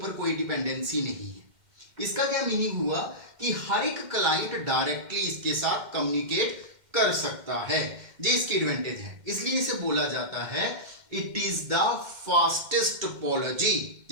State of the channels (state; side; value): late; left; 2.1 ms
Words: कोई डिपेंडेंसी नहीं है। इसका क्या मीनिंग हुआ कि हर एक क्लाइंट डायरेक्टली इसके साथ कम्युनिकेट कर सकता है। ये इसकी एडवांटेज है, इसलिए इसे बोला जाता है it is the fastest topology,